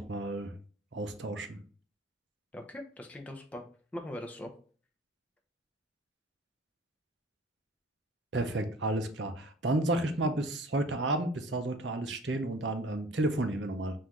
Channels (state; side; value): normal; both; correlation 0.47